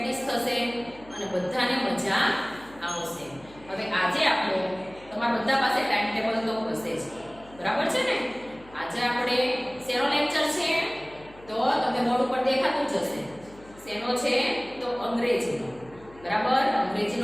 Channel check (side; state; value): left; noise; hum, 23 dB below the sound